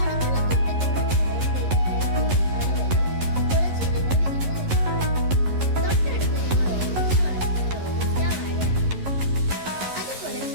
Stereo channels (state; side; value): late; left; 11 ms